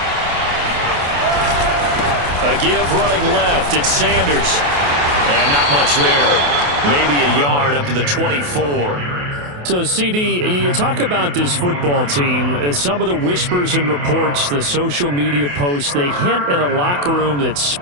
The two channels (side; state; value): left; late; 28 ms